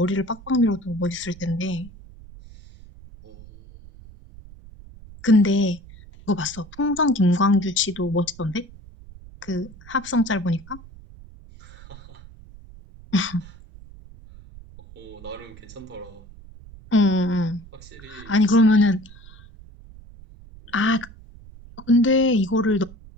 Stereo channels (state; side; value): noise; right; rumble, 20 dB below the sound